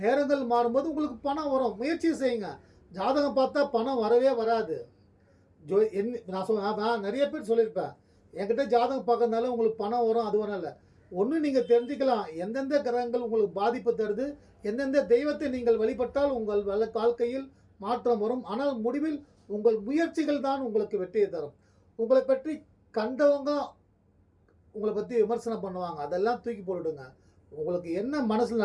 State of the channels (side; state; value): both; identical; correlation 1.00